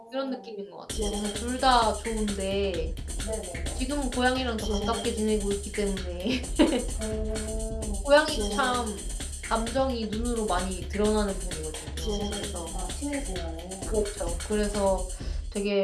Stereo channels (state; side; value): identical; both; correlation 1.00